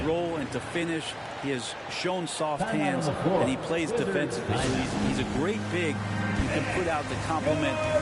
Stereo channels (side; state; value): both; identical; correlation 1.00